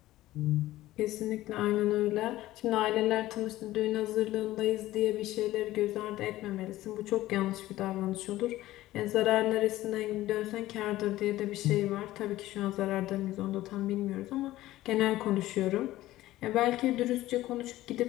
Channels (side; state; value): right; quieter; 15.9 dB